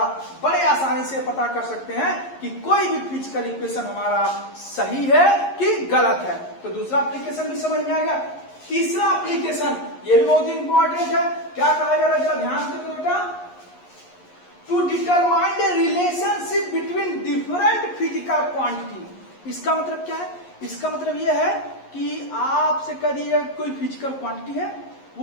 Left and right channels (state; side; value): late; right; 11 ms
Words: बड़े आसानी से पता कर सकते हैं कि कोई भी फिजिकल इक्वेशन हमारा सही है कि गलत है। तो दूसरा एप्लीकेशन भी समझ में आ गया। तीसरा एप्लीकेशन, ये भी बहुत इंपॉर्टेंट है। क्या कहा जा रहा है, जरा ध्यान से देखो बेटा। To determine the relationship between different physical quantity. इसका मतलब क्या है? इसका मतलब यह है कि आपसे कह दिया कोई फिजिकल क्वांटिटी है,